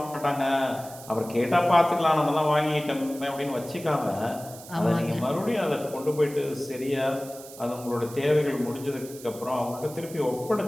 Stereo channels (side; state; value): right; noise; hiss, 17 dB below the sound